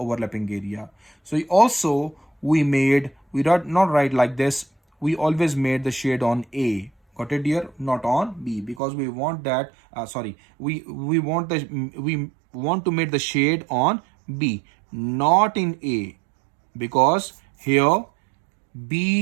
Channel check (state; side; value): drops out; left; at 8.8 s